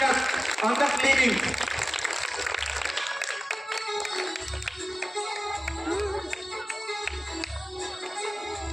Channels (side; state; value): both; normal; correlation 0.97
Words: on the cleaning.